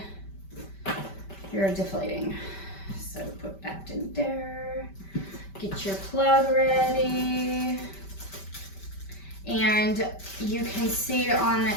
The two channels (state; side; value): late; right; 5.2 ms